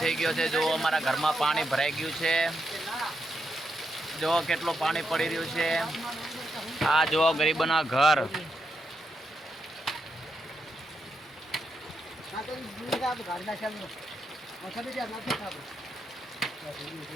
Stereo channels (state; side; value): normal; both; correlation 0.83